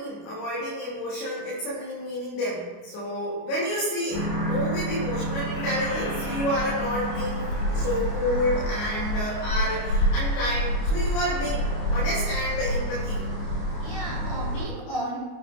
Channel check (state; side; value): late; right; 29 ms